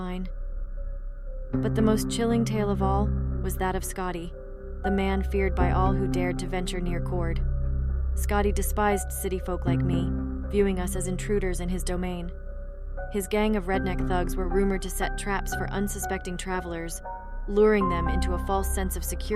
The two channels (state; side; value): identical; both; correlation 1.00